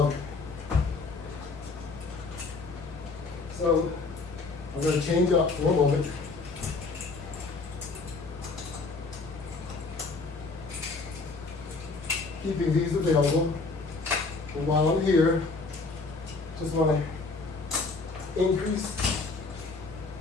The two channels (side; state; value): right; quieter; 3.9 dB